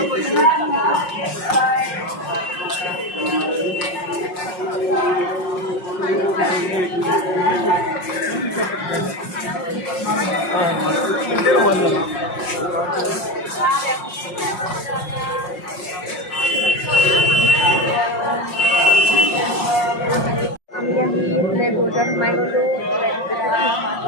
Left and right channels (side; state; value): right; late; 5.5 ms